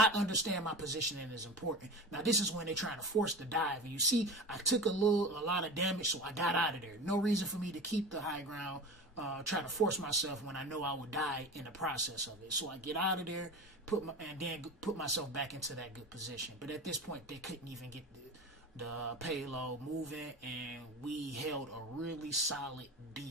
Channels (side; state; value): both; normal; correlation 0.31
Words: my positioning is important. Now this is when they're trying to force the dive. And you see, I took a lot of damage, so I got out of there. No reason for me to keep the high ground. Try to force myself when I know I would die in the process of it. So I get out of there, and then put myself back into that good position. But at this point, they couldn't even get the payload moving, and we held a really solid